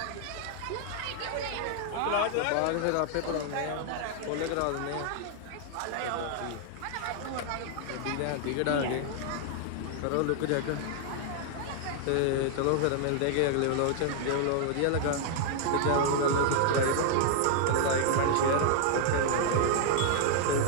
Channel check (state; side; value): different; both; correlation 0.00